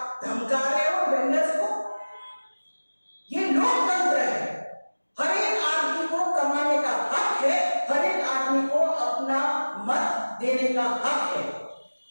धमका रहे हो वेंडर्स को। ये लोकतंत्र है, हर एक आदमी को कमाने का हक है, हर एक आदमी को अपना मत देने का हक है।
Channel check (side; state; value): both; inverted; correlation -1.00